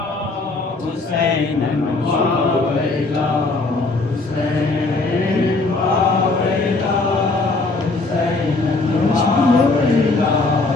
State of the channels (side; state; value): right; quieter; 3.4 dB